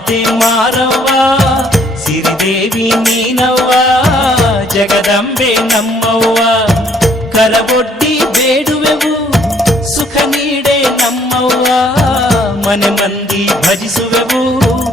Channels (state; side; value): normal; both; correlation 0.64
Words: ಮಾರವ್ವ ಸಿರಿದೇವಿ ನೀನವ್ವ ಜಗದಂಬೆ ನಮ್ಮವ್ವ ಕರವೊಡ್ಡಿ ಬೇಡುವೆವು ಸುಖ ನೀಡೆ ನಮ್ಮವ್ವ ಮನೆ ಮಂದಿ ಭಜಿಸುವೆವು